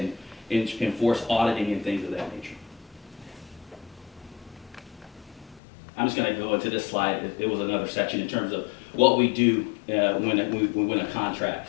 enforce auditing and things of that nature. I'm just going to go into this slide. It was another section in terms of what we do when we win a contract.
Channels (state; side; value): drops out; right; at 5.6 s